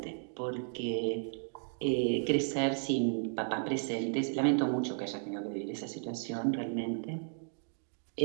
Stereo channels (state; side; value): silent; left; 55 dB below the other